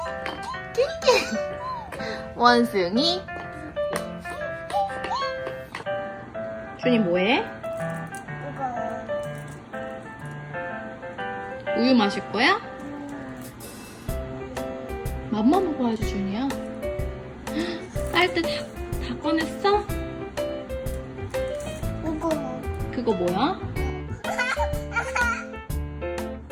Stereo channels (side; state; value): both; identical; correlation 1.00